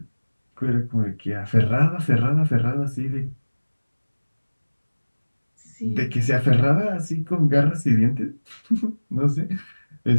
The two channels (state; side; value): inverted; both; correlation -1.00